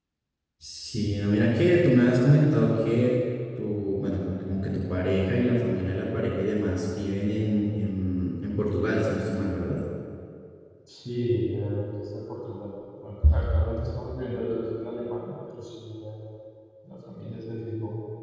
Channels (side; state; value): both; identical; correlation 1.00